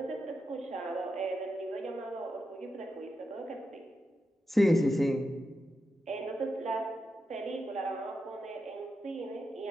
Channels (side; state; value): both; normal; correlation 0.87